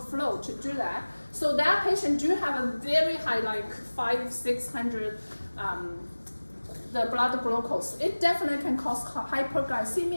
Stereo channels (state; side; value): inverted; both; correlation -1.00